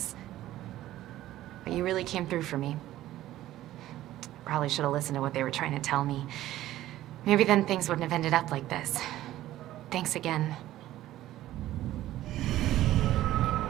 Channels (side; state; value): left; quieter; 14.4 dB